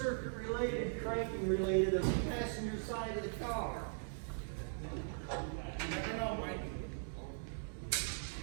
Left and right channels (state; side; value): silent; left; digital silence